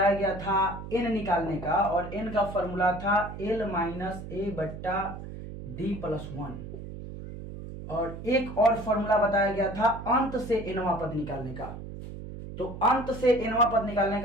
गया था n निकालने का, और n का फॉर्मूला था l माइनस a बट्टा डी प्लस 1। और एक और फॉर्मूला बताया गया था अंत से एनवां पद निकालने का। तो अंत से एनवां पद निकालने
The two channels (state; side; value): noise; right; hum, 10 dB below the sound